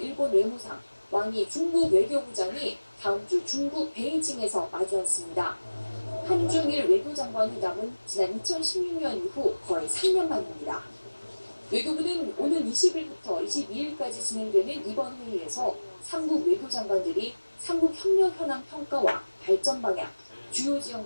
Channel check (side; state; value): both; inverted; correlation -1.00